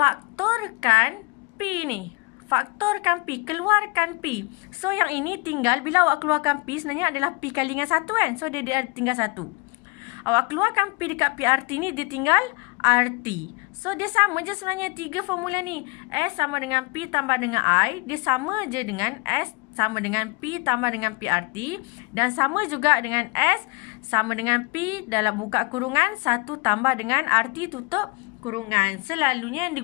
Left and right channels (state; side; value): quieter; right; 28.7 dB